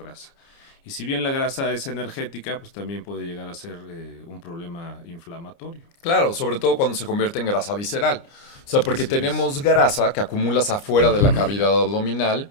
Y si bien la grasa es energética, pues también puede llegar a ser un problema inflamatorio. Claro, sobre todo cuando se convierte en grasa visceral. O sea, porque Así es. tenemos grasa que acumulas afuera de la cavidad abdominal,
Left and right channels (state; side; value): late; right; 29 ms